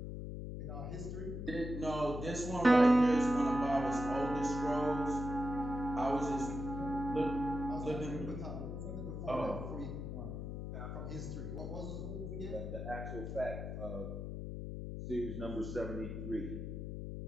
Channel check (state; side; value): noise; left; hum, 6 dB below the sound